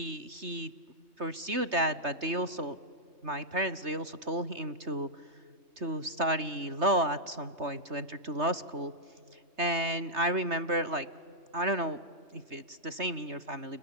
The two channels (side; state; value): left; late; 3.3 ms